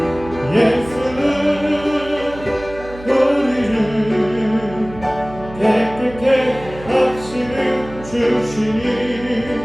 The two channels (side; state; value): right; noise; hum, 15 dB below the sound